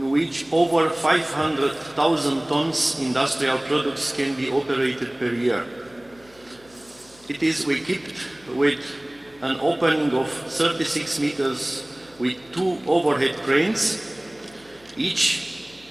which over 500,000 tons industrial products can be operated per year. It is equipped with an opening of 36 meters with 2 overhead cranes, each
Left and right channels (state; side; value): noise; left; hum, 28 dB below the sound